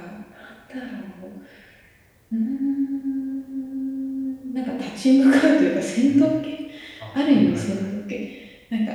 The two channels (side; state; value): both; identical; correlation 1.00